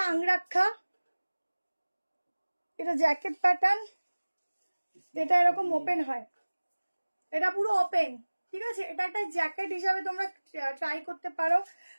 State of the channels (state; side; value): inverted; both; correlation -1.00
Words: আংরাক্ষা, এটা জ্যাকেট প্যাটার্ন, এটা এরকম ওপেন হয়, এটা পুরো ওপেন, ঠিক আছে। এটা একটা জ্যাকেট হিসাবে তোমরা ট্রাই করতে পারো,